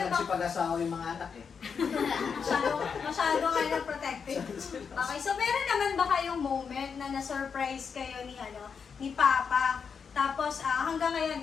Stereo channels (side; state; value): right; quieter; 6.2 dB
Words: ba? nagsipag-asawa yung mga anak eh. Masyado kayo protective. Okay, so meron naman ba kayong moment na na-surprise kayo ni Papa? Tapos, hanggang